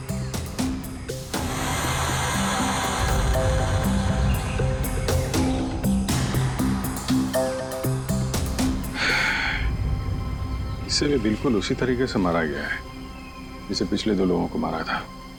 इसे भी बिल्कुल उसी तरीके से मारा गया है जिसे पिछले 2 लोगों को मारा था।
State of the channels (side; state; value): both; identical; correlation 1.00